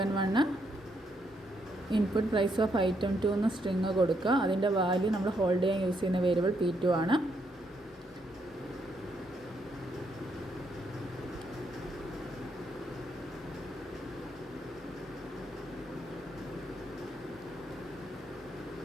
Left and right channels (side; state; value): both; normal; correlation 0.76